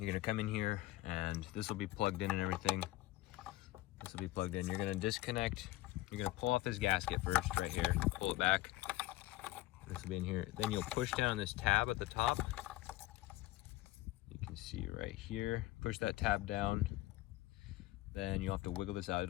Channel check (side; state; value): right; quieter; 17.2 dB